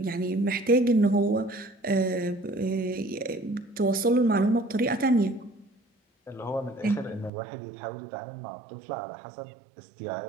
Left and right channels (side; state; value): left; drops out; at 7.3 s